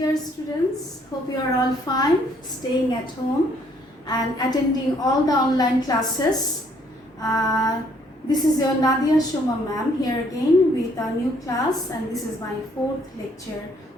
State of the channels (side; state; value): both; normal; correlation 0.65